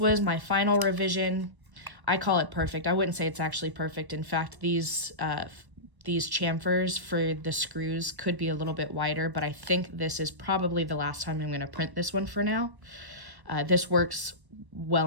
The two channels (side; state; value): left; late; 1.1 ms